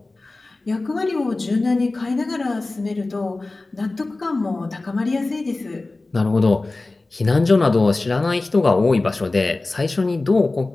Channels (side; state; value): right; quieter; 3.2 dB